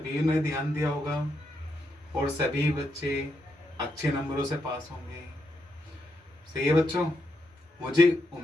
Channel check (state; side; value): normal; both; correlation 0.81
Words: ने ध्यान दिया होगा और सभी बच्चे अच्छे नंबरों से पास होंगे। सही है बच्चों, मुझे